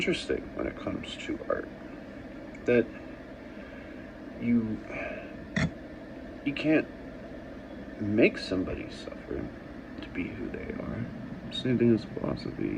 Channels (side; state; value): both; identical; correlation 1.00